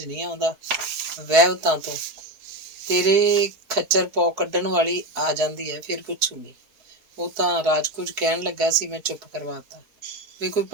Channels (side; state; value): left; late; 4.7 ms